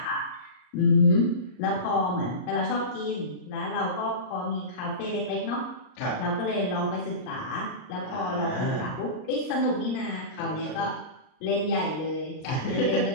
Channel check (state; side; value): late; right; 38 ms